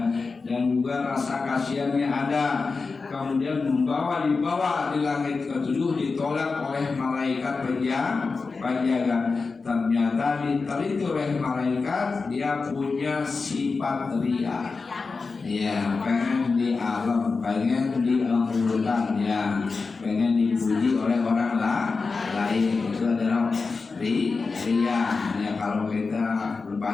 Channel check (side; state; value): right; quieter; 4.3 dB